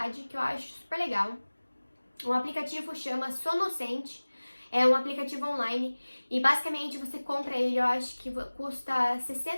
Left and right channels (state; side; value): inverted; both; correlation -1.00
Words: que eu acho super legal. O aplicativo chama Sonocente, é um aplicativo online e basicamente você compra ele, eu acho que custa